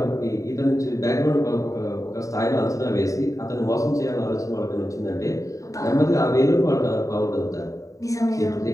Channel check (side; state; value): right; late; 0.16 ms